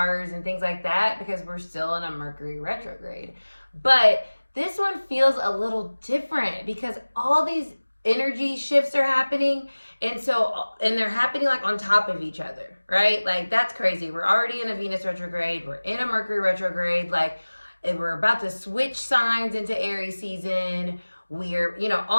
and things like that because we're still in a Mercury retrograde. But this one feels a little different because all these energy shifts are happening and they're happening like on top of each other, right? Like that's crazy. We're already in a Venus retrograde. We're in a Mercury retrograde. Like we're about to switch signs into Aries season.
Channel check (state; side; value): inverted; both; correlation -1.00